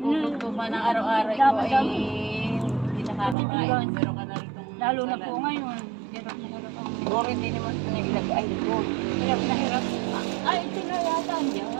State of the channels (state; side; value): drops out; left; at 3.4 s